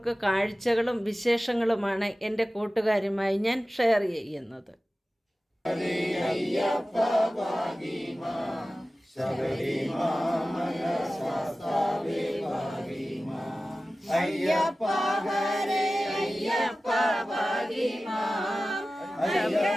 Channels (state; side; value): normal; both; correlation 0.96